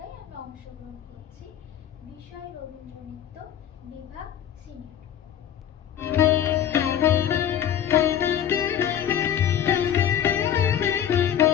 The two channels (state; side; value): quieter; right; 9.9 dB